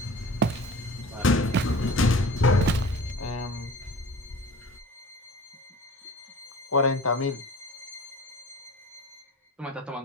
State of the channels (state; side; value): normal; both; correlation 0.41